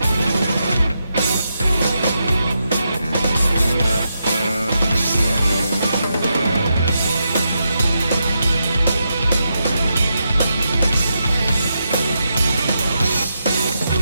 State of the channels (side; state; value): both; inverted; correlation -0.84